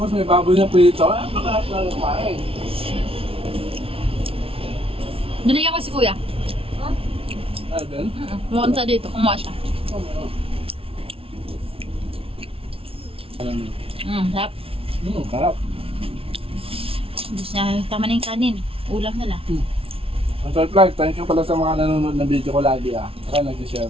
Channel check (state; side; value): late; left; 0.27 ms